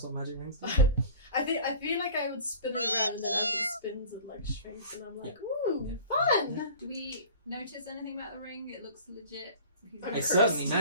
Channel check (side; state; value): both; inverted; correlation -0.42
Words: what magic rings do. I feel like I would spin it around and then as he spins it like shrinks and I'm like, ooh, Yeah. fun. Do we notice anything about the ring? It looks legit. He's I'm It's cursed. certainly